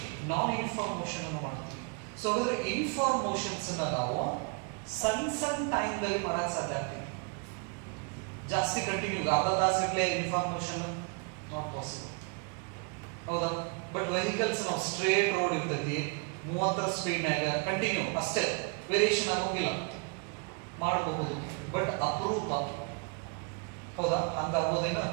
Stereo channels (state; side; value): quieter; left; 35.6 dB